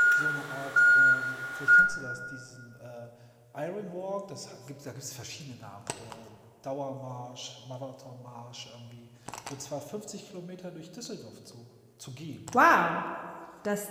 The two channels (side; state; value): both; identical; correlation 1.00